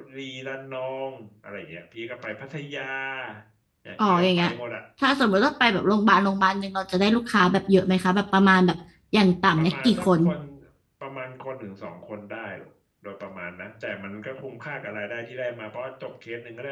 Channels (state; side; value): identical; both; correlation 1.00